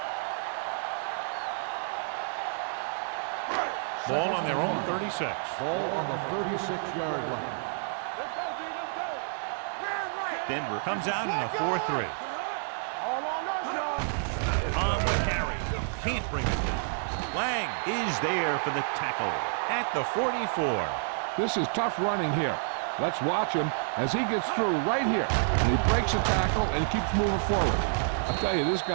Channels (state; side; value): silent; left; digital silence